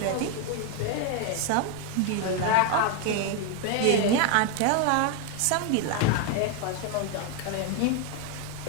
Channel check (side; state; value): both; different; correlation 0.01